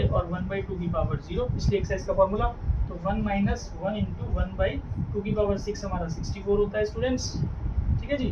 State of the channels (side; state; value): both; identical; correlation 1.00